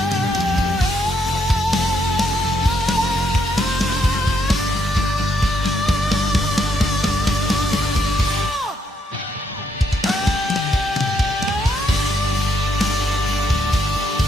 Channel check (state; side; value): normal; both; correlation 0.75